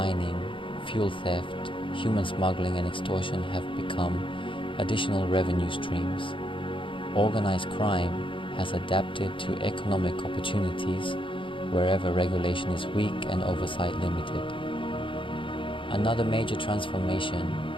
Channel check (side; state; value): right; late; 0.25 ms